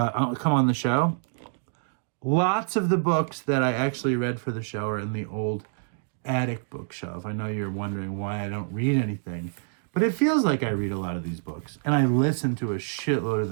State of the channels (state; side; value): silent; left; digital silence